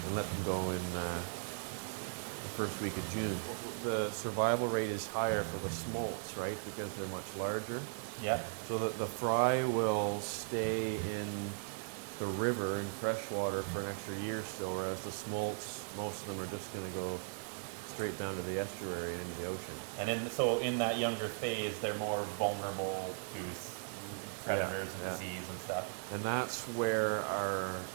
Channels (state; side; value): silent; left; digital silence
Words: let them go in the first week of June. The survival rate is higher for the smolts, right, because they're much larger. Yeah. So that the fry will stay in the river in freshwater for an extra year still, whereas the smolts, most of them are just going to go straight down to the estuary and into the ocean. And so in that younger phase, they're more vulnerable to predators and disease and stuff. And that's where our